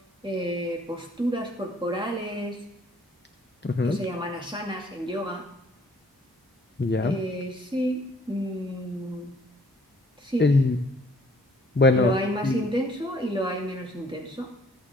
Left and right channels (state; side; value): normal; both; correlation 0.60